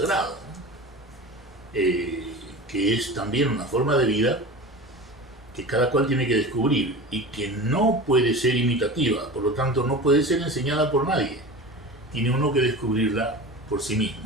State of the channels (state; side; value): normal; both; correlation 0.32